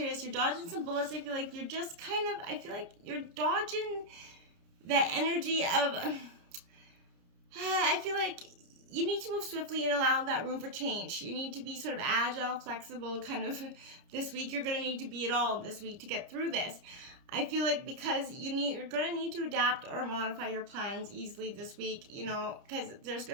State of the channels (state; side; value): late; left; 29 ms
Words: You're dodging some bullets. I feel like you're just I feel like you're dodging that energy of, I feel like you need to move swiftly and allow that room for change. You need to be sort of agile, flexible, kind of this week. You're going to need to be it all this week to get through this. I feel like because you're going to need to adapt or modify your plans easily this week, because there's